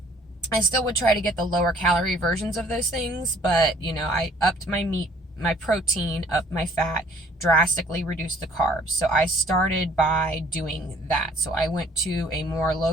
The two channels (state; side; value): normal; both; correlation 0.58